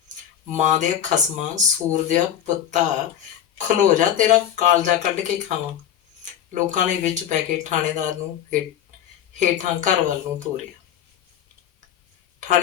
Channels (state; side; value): quieter; right; 10.3 dB